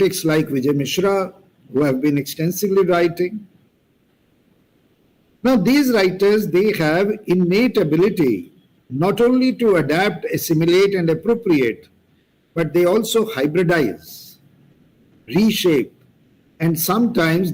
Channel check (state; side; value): identical; both; correlation 1.00